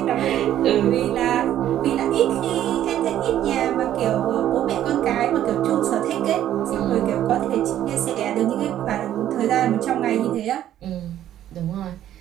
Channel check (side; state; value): left; quieter; 11.8 dB